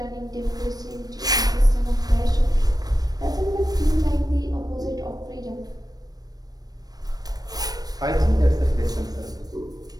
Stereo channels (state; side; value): late; left; 0.19 ms